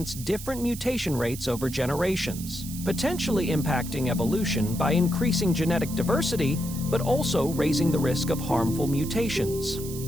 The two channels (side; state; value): right; noise; hiss, 12 dB below the sound